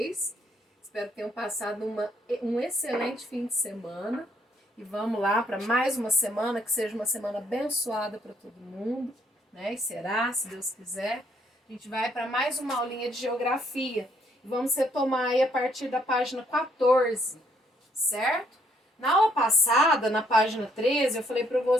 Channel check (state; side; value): normal; both; correlation 0.69